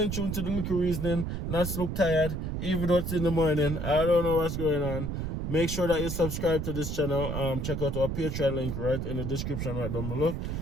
tuned to the little reasoning. Not look tired, even though it's in the morning. I don't know what's going on. Make sure that you subscribe to this channel. Check out our Patreon link right in the description right down below,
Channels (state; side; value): noise; right; rumble, 3 dB below the sound